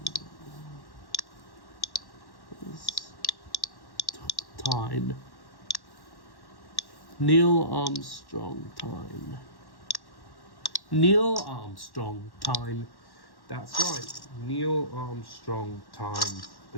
Time. Neil Armstrong time. Neil Armstrong time. That's right. Neil Armstrong time.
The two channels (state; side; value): late; right; 1.1 ms